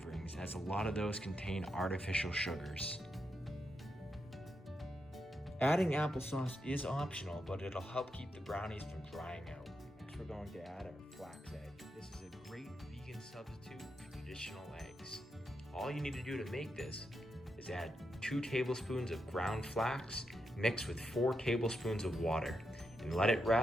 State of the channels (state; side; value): normal; both; correlation 0.84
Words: as a lot of those contain artificial sugars. Adding applesauce is optional, but it'll help keep the brownies from drying out. Next, we're going to add our flax egg. This is a great vegan substitute for traditional eggs. All you need to do to make this is add 2 tablespoons of ground flax mixed with 4 tablespoons of water and let it